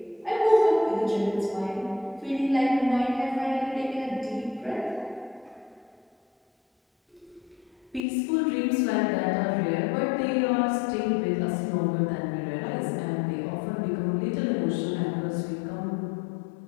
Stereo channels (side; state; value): right; drops out; at 8.1 s